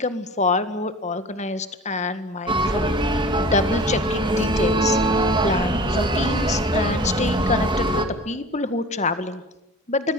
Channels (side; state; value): both; normal; correlation 0.39